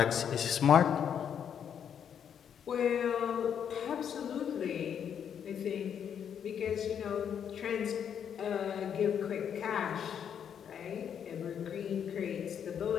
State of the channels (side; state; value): right; quieter; 8.3 dB